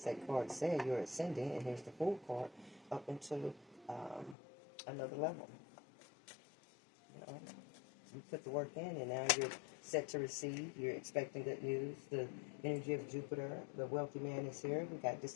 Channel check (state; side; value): drops out; right; at 4.4 s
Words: that card said, you're ascending, and here's the Fool card, up into another level. You know, you put the work in, and now you're set to receive. You're expecting good news. The energy of Jupiter, the wealthy man is here. We got